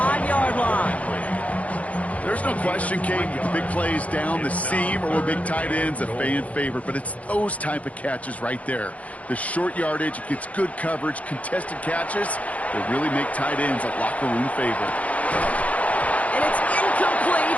line. There's no question, Kate, the big plays down the seam or with big tight ends, a fan favorite, but it's those type of catches right there. The short yardage, it gets good coverage, contested catches that really make tight ends a locker room favorite. And it's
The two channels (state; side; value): late; right; 0.067 ms